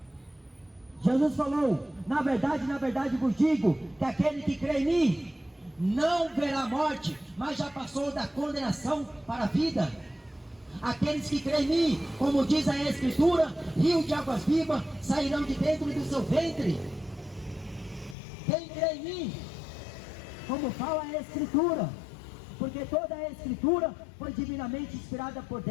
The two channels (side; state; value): right; drops out; at 18.2 s